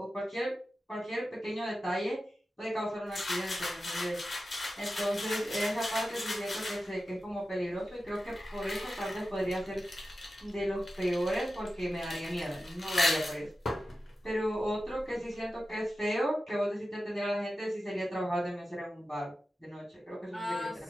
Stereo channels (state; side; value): normal; both; correlation 0.93